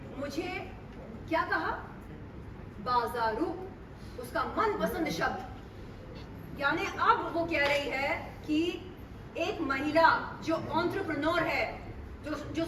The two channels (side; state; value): both; identical; correlation 1.00